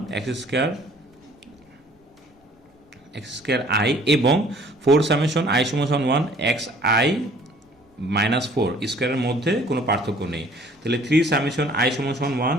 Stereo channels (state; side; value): normal; both; correlation 0.55